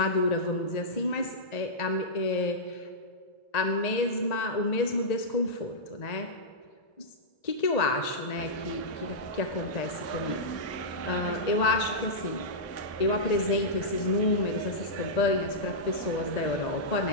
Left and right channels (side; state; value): right; late; 1.8 ms